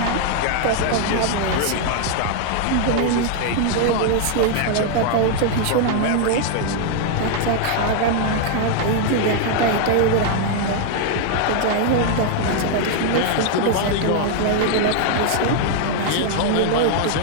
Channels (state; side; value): different; both; correlation 0.00